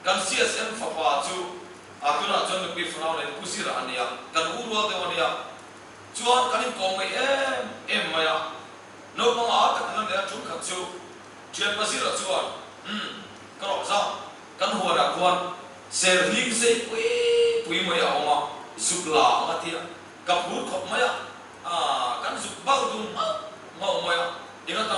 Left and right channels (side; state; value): both; identical; correlation 1.00